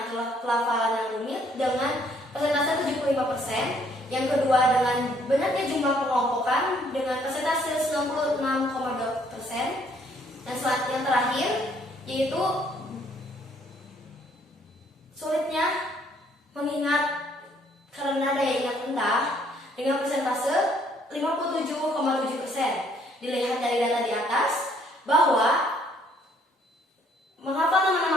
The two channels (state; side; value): normal; both; correlation 0.65